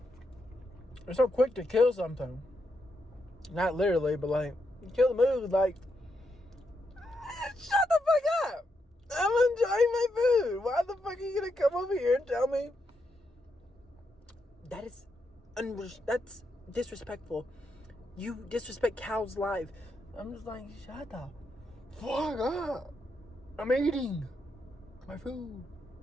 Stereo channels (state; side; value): normal; both; correlation 0.81